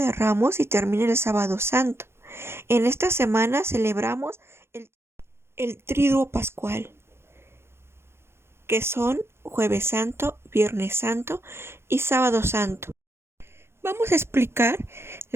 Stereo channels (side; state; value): left; late; 0.12 ms